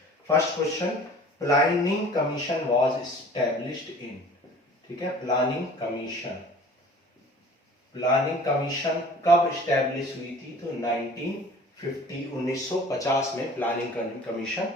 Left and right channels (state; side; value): normal; both; correlation 0.47